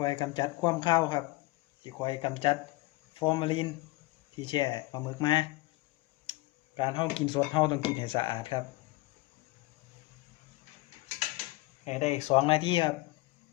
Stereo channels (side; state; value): right; quieter; 20.6 dB